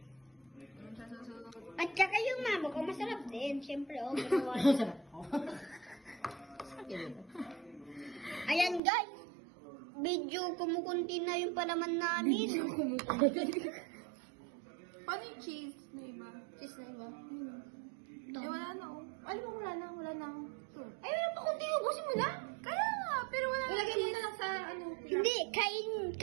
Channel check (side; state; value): left; drops out; at 8.8 s